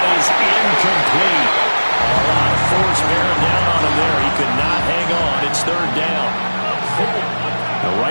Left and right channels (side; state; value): both; inverted; correlation -1.00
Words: is incomplete. A lot of force bearing down on him there. He could not hang on. It's 3rd down. Now